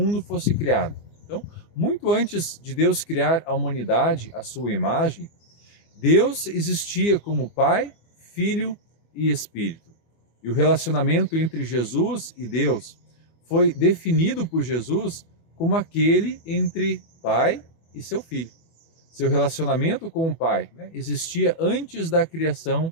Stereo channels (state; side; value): late; right; 24 ms